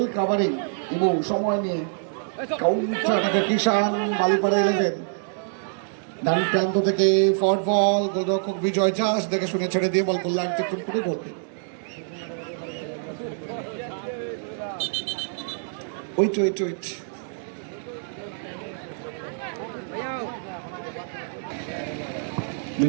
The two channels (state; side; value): silent; left; 61 dB below the other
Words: কাভারিং। ইবু সময় নিয়ে কাউন্টার থেকে কৃষাণ, বালিপাড়া 11 ডান প্রান্ত থেকে ফরওয়ার্ড বল, গোলরক্ষক বিজয় জাস্ট দেখে শুনে ছেড়ে দিয়ে বল গোললাইন অতিক্রম করে গোল। ওয়েট